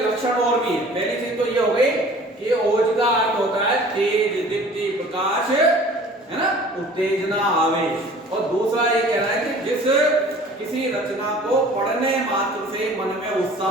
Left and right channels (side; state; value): both; normal; correlation 0.47